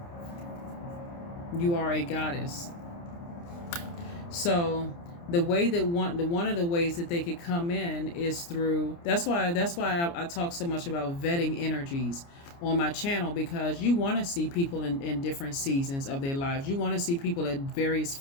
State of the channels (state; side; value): late; right; 29 ms